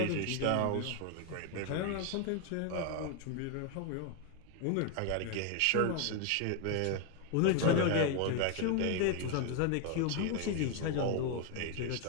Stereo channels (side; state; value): both; different; correlation 0.01